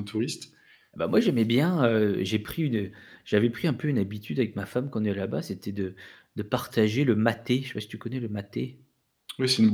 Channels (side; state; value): both; identical; correlation 1.00